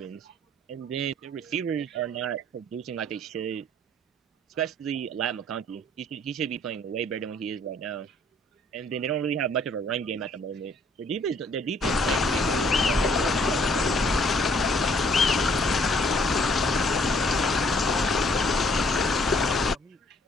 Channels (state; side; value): normal; both; correlation 0.62